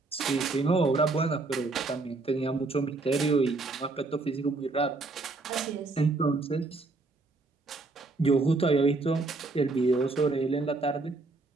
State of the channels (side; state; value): left; quieter; 3.5 dB